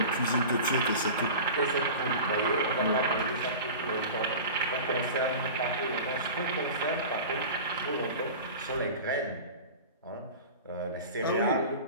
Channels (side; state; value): both; inverted; correlation -0.35